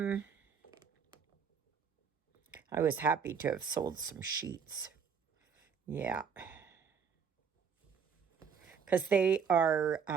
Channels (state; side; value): quieter; left; 6.6 dB